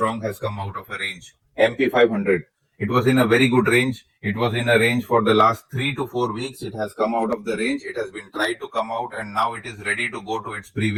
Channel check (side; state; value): both; identical; correlation 1.00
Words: has come out of a range. MP 500. It was in a very good range. It was in a range for the last 3 to 4 weeks. It has come out of the range. It has been tried to come out and now it is ready to go to its